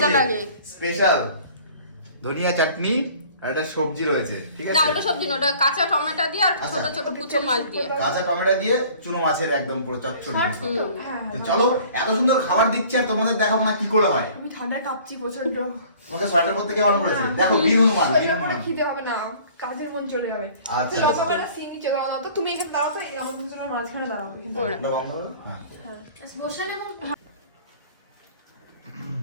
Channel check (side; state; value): both; inverted; correlation -0.50